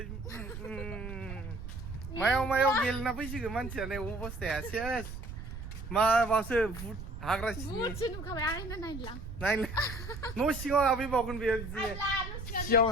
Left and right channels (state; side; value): noise; right; rumble, 9 dB below the sound